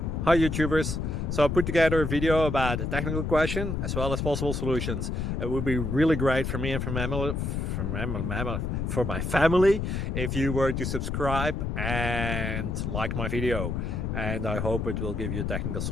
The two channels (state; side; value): noise; left; rumble, 2 dB below the sound